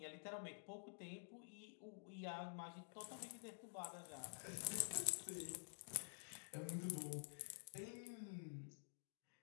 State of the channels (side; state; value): right; silent; digital silence